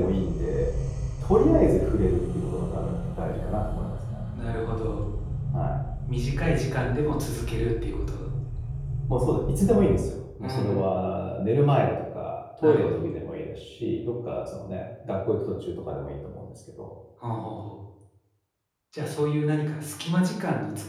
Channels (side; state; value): both; identical; correlation 1.00